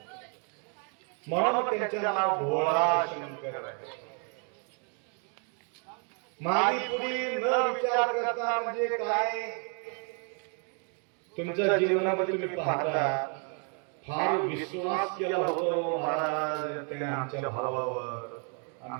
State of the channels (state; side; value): quieter; left; 39.7 dB